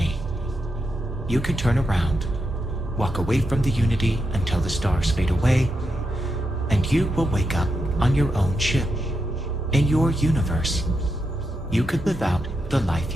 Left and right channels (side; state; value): both; normal; correlation 0.85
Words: You can turn around, walk away from the Unity until the stars fade away, and you will wake up on your own ship, in your universe. You could live out the